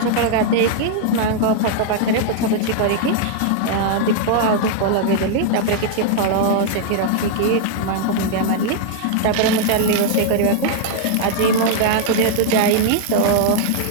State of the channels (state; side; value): different; both; correlation 0.00